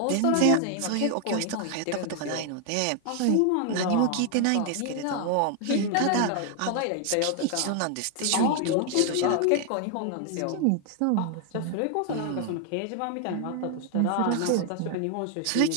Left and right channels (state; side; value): different; both; correlation 0.00